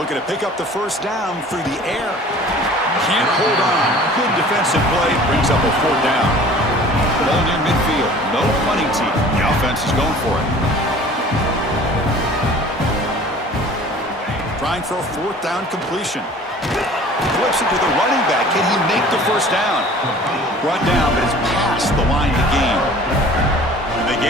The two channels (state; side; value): normal; both; correlation 0.47